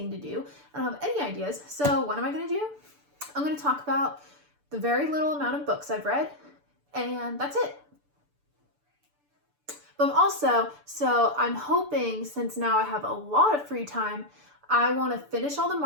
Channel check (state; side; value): late; left; 6.9 ms